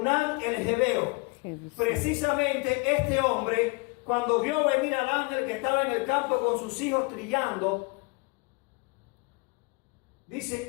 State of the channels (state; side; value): quieter; right; 28.8 dB